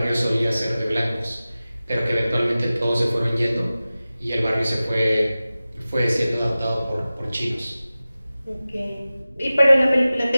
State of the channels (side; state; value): both; inverted; correlation -0.96